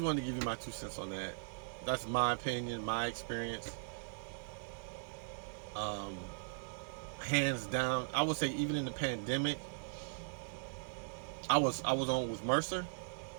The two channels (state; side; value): silent; left; digital silence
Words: wanted to give you my 2 cents on that. That's my opinion, my experience. Hands down, I would say even in the pandemic, I was on with Mercer,